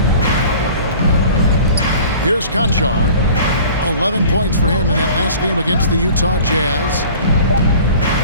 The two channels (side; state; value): both; inverted; correlation -0.45